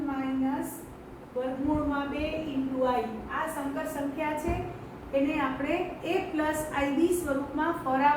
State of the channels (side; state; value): both; identical; correlation 1.00